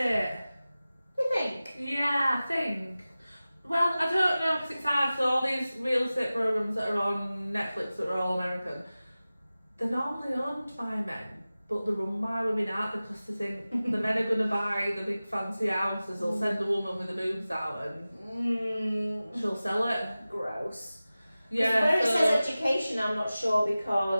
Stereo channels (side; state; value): both; inverted; correlation -0.96